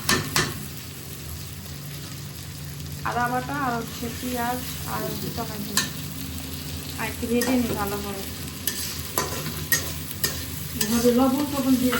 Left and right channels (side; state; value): both; identical; correlation 1.00